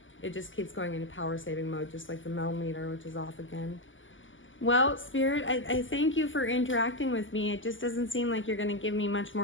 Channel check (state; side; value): late; right; 0.57 ms